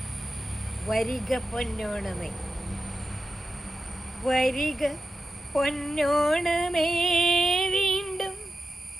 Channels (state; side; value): normal; both; correlation 0.91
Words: വരിക പൊന്നോണമേ, വരിക പൊന്നോണമേ, വീണ്ടും